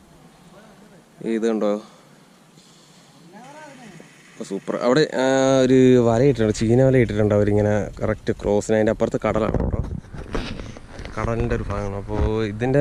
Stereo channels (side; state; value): both; identical; correlation 1.00